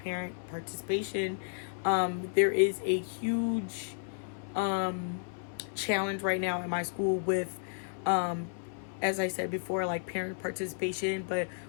participation. There is a huge challenge right now in my school with as I said before, like parent participation, but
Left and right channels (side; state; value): right; silent; 56 dB below the other